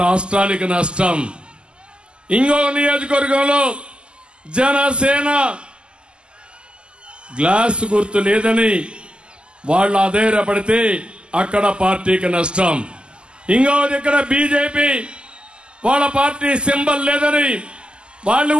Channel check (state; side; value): late; left; 0.050 ms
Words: రాష్ట్రానికి నష్టం. ఇంకో నియోజకవర్గంలో జనసేన గ్లాస్ గుర్తు లేదని వాళ్ళు అధైర్యపడితే అక్కడ పార్టీకి నష్టం. ఇంకో దగ్గర బీజేపీ వాళ్ళ పార్టీ సింబల్ లేదని వాళ్ళు